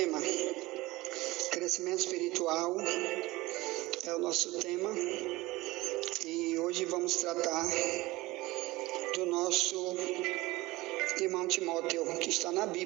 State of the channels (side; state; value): left; quieter; 20.0 dB